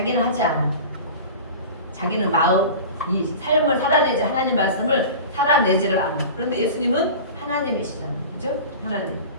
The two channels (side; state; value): both; inverted; correlation -0.35